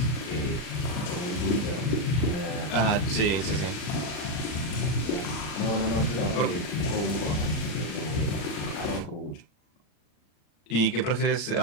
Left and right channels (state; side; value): late; right; 40 ms